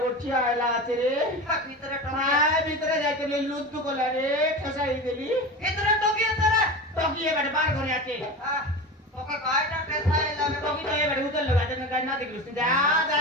উঠছি আইলা আছে রে ভিতরে টকে মায় ভিতরে যাইতে লে লুদ্দু কলা রে ঠসাই দিলি ভিতরে টকে তোরা টকিয়ে বাড়ি বার করে আছে हां ওকে গায়টা টেসাই লাগে টকি তো এবারে উতল লাগা দেন গাই না দেখলিস যা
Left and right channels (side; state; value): both; normal; correlation 0.28